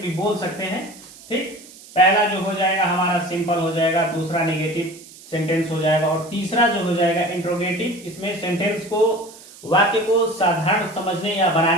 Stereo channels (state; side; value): noise; right; hiss, 20 dB below the sound